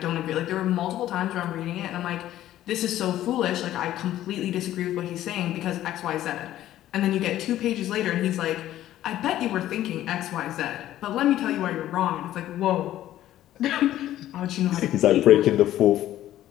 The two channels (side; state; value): right; quieter; 13.2 dB